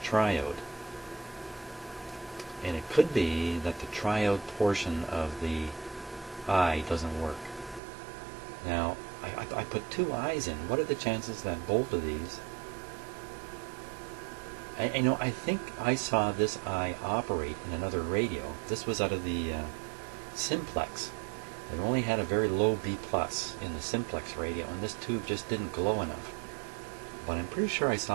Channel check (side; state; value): left; drops out; at 7.8 s